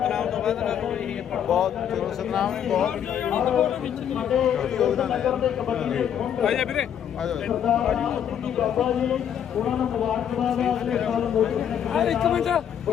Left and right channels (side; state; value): right; quieter; 9.2 dB